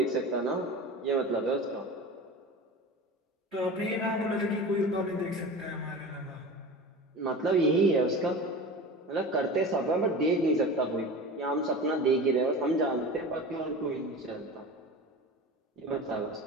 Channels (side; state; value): both; normal; correlation 0.33